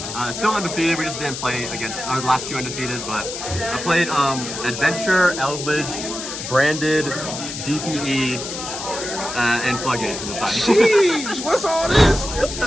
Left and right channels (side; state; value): left; noise; hiss, 7 dB below the sound